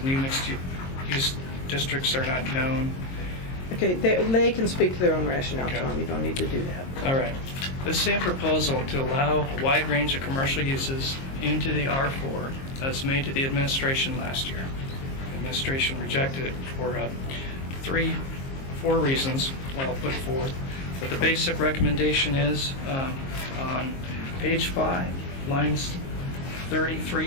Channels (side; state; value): right; late; 22 ms